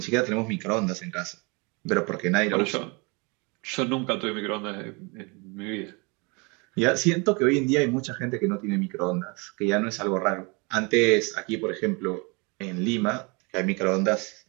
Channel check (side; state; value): left; quieter; 29.6 dB